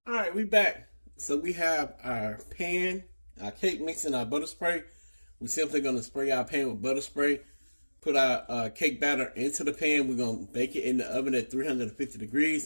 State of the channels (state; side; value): inverted; both; correlation -1.00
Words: Alright, we back. So we have our pan, our cake mix, and our butter spray. We're simply going to spray our pan with butter spray. Put our cake batter into the pan. We're going to bake it in the oven at 350